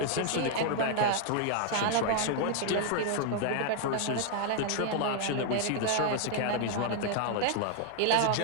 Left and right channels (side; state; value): both; different; correlation 0.00